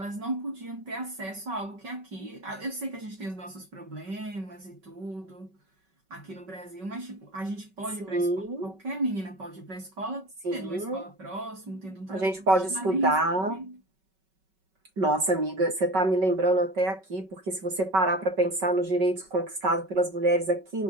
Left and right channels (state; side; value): late; left; 5.3 ms